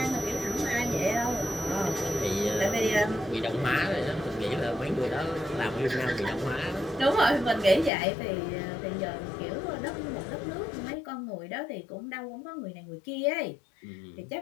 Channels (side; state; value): right; drops out; at 7.9 s